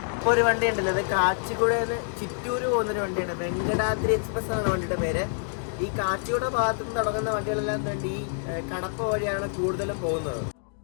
ഒരു വണ്ടി ഉണ്ടല്ലോ, ഇത് കാച്ചിക്കുടന്ന് ചിറ്റൂര് പോകുന്നൊരു വണ്ടിയാണ്. വെങ്കടാദ്രി എക്സ്പ്രസ് ആണ് വണ്ടിയുടെ പേര്. ഈ കാച്ചിക്കുട ഭാഗത്തു നിന്ന് തുടങ്ങുന്ന വണ്ടികളെല്ലാം വേണ്ടി ഈ കടപ്പ വഴിയാണ് കൂടുതലും പോകുന്നത്.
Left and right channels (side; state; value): right; silent; digital silence